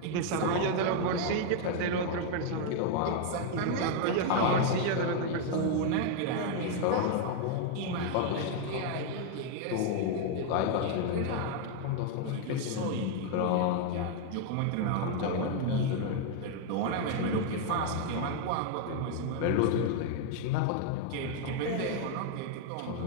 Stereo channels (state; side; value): different; both; correlation 0.00